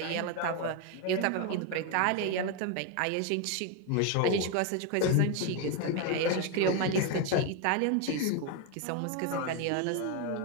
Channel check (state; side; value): different; both; correlation 0.02